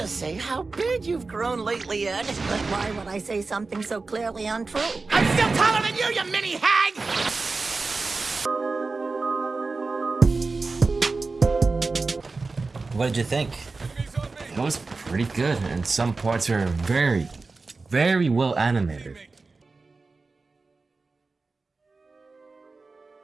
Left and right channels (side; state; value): left; quieter; 3.9 dB